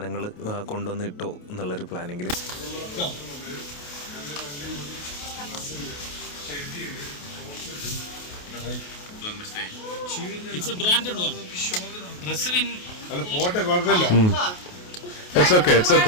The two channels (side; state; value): right; late; 28 ms